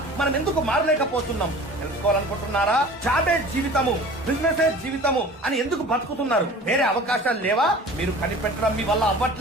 మనం ఎందుకు మారలేకపోతున్నాం? తెలుసుకోవాలనుకుంటున్నారా? జాబే జీవితము, బిజినెస్ జీవితము అని ఎందుకు బతుకుతున్నారు? వేరే అవకాశాలు లేవా? మీరు కనిపెట్టడం మీ వల్ల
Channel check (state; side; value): normal; both; correlation 0.42